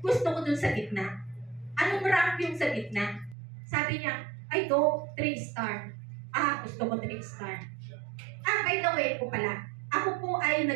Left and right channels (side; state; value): left; drops out; at 3.4 s